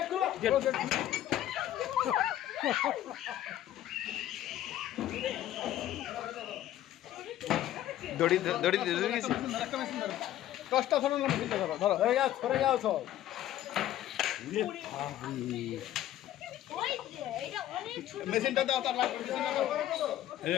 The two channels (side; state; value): right; quieter; 12.8 dB